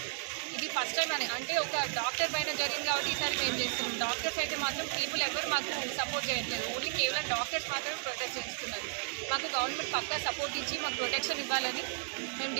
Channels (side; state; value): left; silent; 55 dB below the other